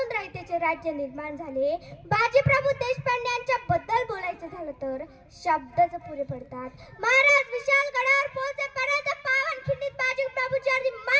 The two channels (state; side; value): identical; both; correlation 1.00